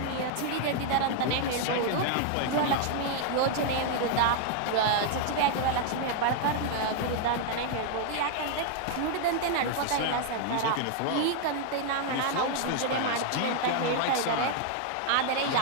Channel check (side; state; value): both; different; correlation 0.00